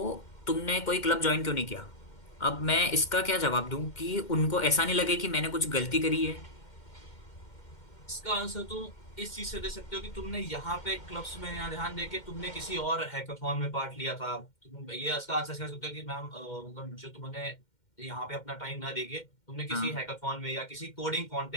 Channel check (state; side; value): late; right; 2.1 ms